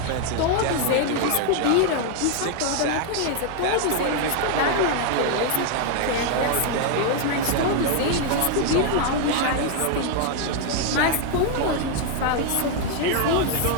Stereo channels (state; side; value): different; both; correlation 0.00